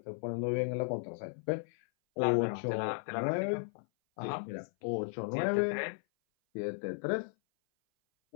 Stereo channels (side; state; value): right; silent; 54 dB below the other